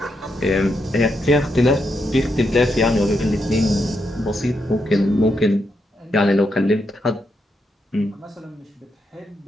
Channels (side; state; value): both; normal; correlation 0.81